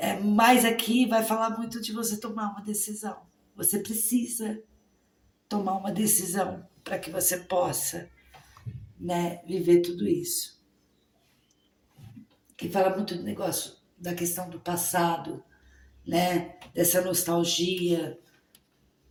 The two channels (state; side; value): identical; both; correlation 1.00